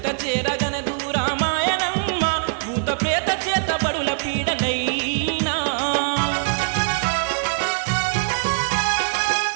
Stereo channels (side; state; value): left; silent; digital silence